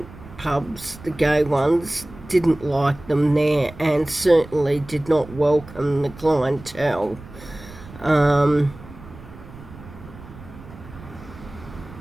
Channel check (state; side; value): noise; right; rumble, 17 dB below the sound